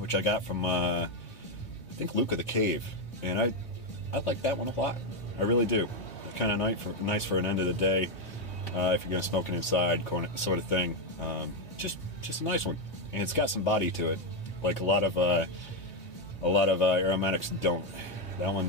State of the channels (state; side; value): late; right; 3.0 ms